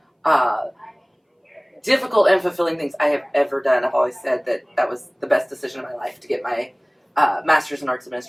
difficult and fulfilling things I have ever done. I've always said that that was the best decision of my life to get my master's in arts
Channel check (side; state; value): both; identical; correlation 1.00